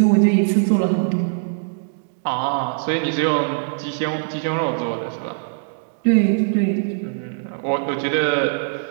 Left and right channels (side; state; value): left; silent; digital silence